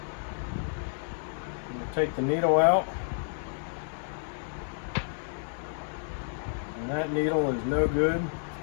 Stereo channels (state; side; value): silent; right; digital silence